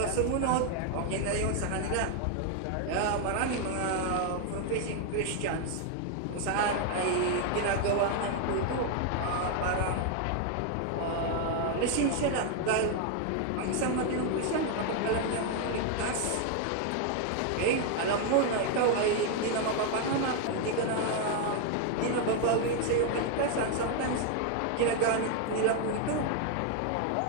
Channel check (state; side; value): different; both; correlation 0.00